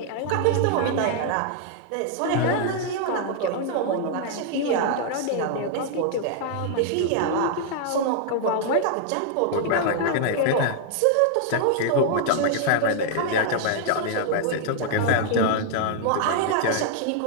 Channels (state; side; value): different; both; correlation 0.00